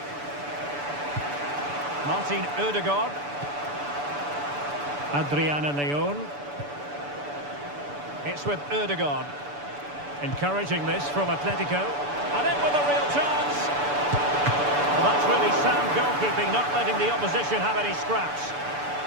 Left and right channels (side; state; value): left; late; 6.9 ms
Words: Martin Ødegaard. Adriana Leon. It's with Ødegaard. Encouraging this from Atletico. And in with a real chance. Well, that's really sound goalkeeping, not letting the opposition have any scraps.